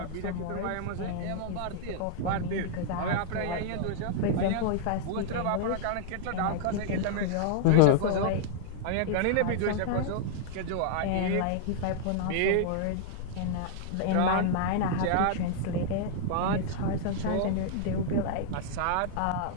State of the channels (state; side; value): different; both; correlation -0.01